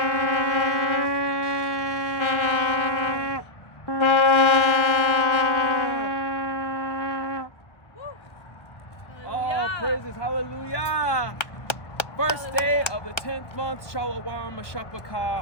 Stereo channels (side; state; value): right; late; 1.0 ms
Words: All praises, hallelujah. First day of the 10th month, Shalom